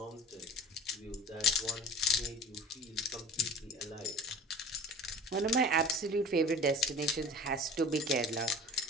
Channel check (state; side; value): normal; both; correlation 0.38